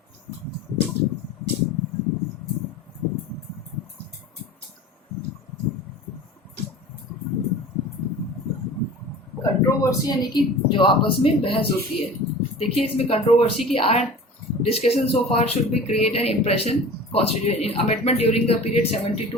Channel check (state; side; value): normal; both; correlation 0.39